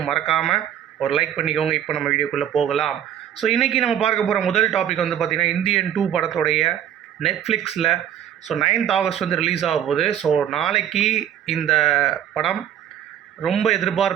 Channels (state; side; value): quieter; left; 10.2 dB